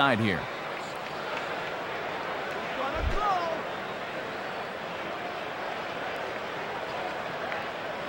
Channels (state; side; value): identical; both; correlation 1.00